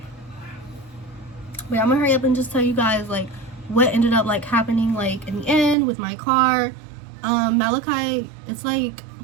Wait, I'm gonna hurry up and just tell you guys like what ended up like happening like in the end with my car. Malachi, it's like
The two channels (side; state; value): left; drops out; at 5.8 s